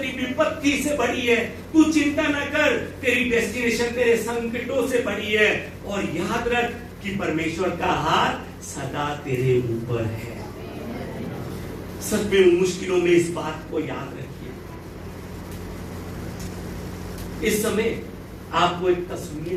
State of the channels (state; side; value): identical; both; correlation 1.00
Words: विपत्ति से बड़ी है, तू चिंता न कर, तेरी डेस्टिनेशन तेरे संकटों से बड़ी है। और याद रख कि परमेश्वर का हाथ सदा तेरे ऊपर है। सच में उन मुश्किलों में इस बात को याद रखिए। इस समय आपको एक तस्वीर